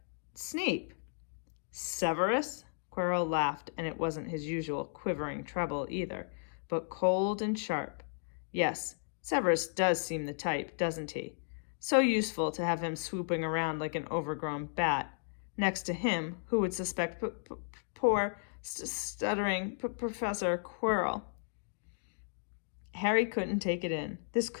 Snape. Severus? Quirrell laughed, and it wasn't his usual quivering treble either, but cold and sharp. Yes, Severus does seem the type, doesn't he? So useful to have him swooping around like an overgrown bat. Next to him, who would suspect poor, stuttering Professor Quirrell? Harry couldn't take it in. This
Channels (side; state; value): right; silent; digital silence